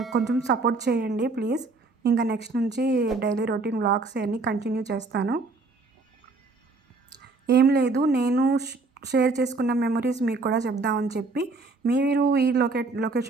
కొంచెం సపోర్ట్ చేయండి ప్లీజ్. ఇంకా నెక్స్ట్ నుంచి డైలీ రొటీన్ వ్లాగ్స్ అన్నీ కంటిన్యూ చేస్తాను. ఏం లేదు, నేను షేర్ చేసుకున్న మెమరీస్ మీకు కూడా చెప్దామని చెప్పి, మీరు ఈ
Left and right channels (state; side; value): quieter; left; 3.7 dB